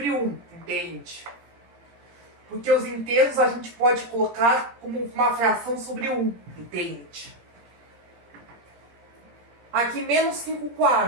1, entende? Porque os inteiros a gente pode colocar como uma fração sobre 1, entende? Aqui, menos 5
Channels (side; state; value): left; late; 17 ms